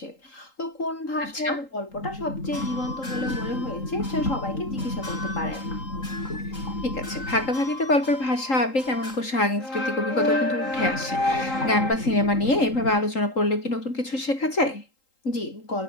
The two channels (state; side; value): late; right; 3.8 ms